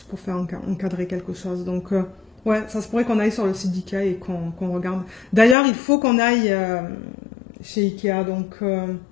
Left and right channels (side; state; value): right; drops out; at 5.6 s